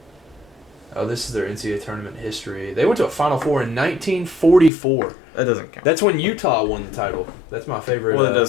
Oh, this is their NCAA Tournament history. They went to a Final Four in 1944. That doesn't count. That's when Utah won the title. That's my favorite. Well, it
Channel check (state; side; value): drops out; right; at 4.7 s